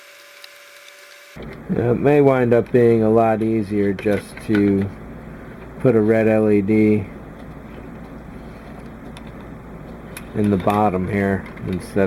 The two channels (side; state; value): both; identical; correlation 1.00